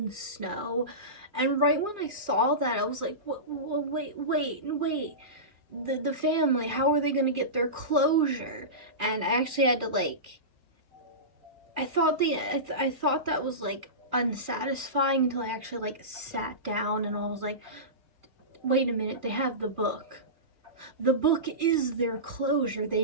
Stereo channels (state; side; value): late; left; 2.4 ms